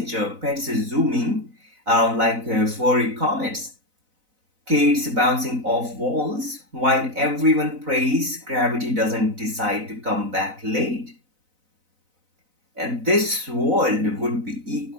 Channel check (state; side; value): late; left; 4.0 ms